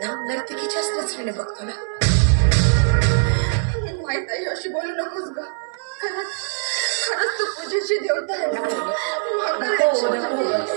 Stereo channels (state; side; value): silent; left; 64 dB below the other